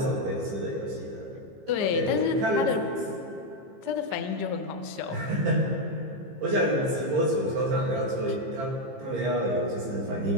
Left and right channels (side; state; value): left; late; 15 ms